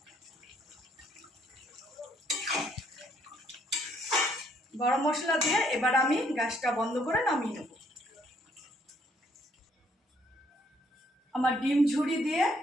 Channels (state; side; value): normal; both; correlation 0.68